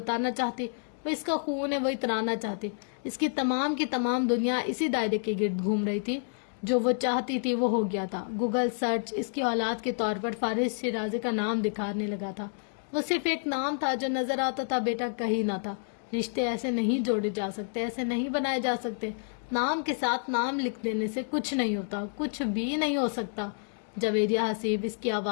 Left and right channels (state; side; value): silent; right; digital silence